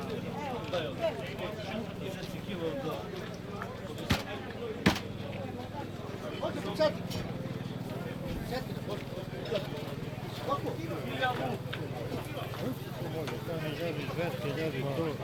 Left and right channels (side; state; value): both; identical; correlation 1.00